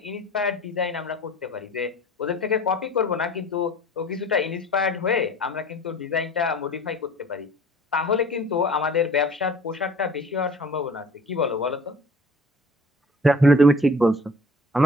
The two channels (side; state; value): both; normal; correlation 0.47